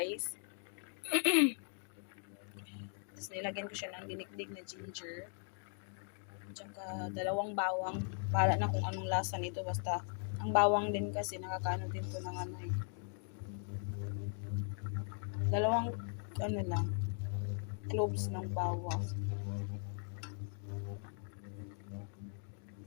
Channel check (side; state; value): right; silent; 52 dB below the other